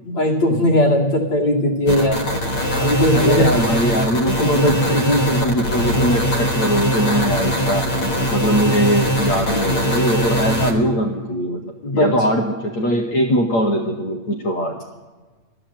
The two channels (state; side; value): late; right; 8.7 ms